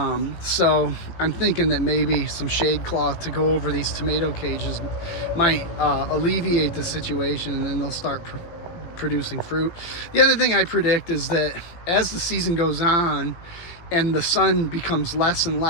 So I'm thinking that maybe some shade cloth to go over these tomato cages might alleviate the situation, and then they'll start producing fruit. The other thing I predict is that as the season goes on and the sun becomes less and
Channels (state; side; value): late; right; 18 ms